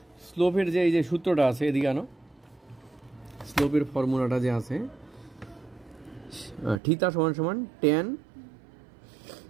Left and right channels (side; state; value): left; drops out; at 6.8 s